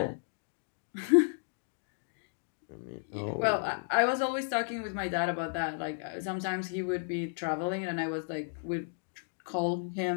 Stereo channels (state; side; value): silent; right; digital silence